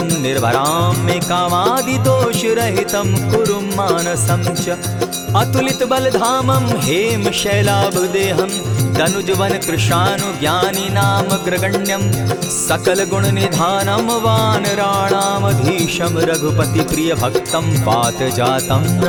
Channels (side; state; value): both; identical; correlation 1.00